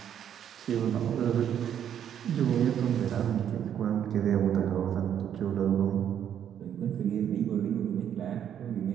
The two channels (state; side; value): quieter; left; 9.4 dB